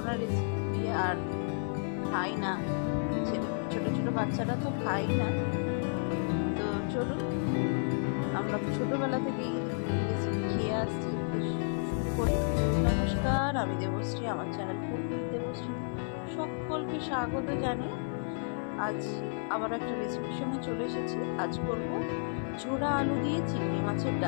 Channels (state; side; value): silent; right; 57 dB below the other